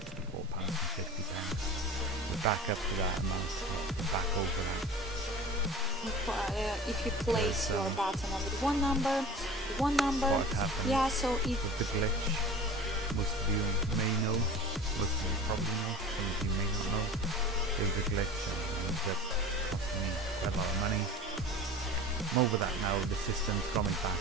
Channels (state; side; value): normal; both; correlation 0.38